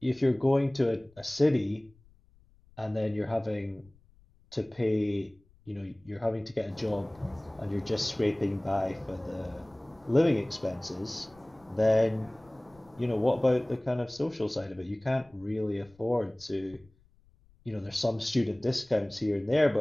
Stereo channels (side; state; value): left; noise; rumble, 29 dB below the sound